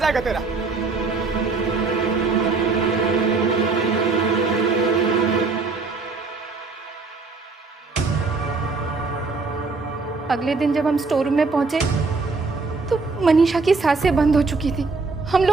तेरा। अगले दिन जब हम स्टोर रूम में पहुंचे तो मनीषा की सांसें बंद हो चुकी थी। हम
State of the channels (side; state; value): left; quieter; 4.1 dB